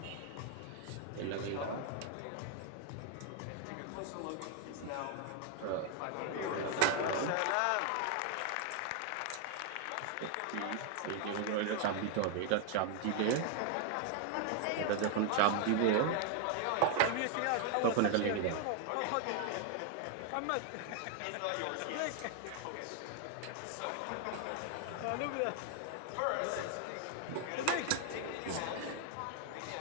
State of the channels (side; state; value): both; different; correlation 0.00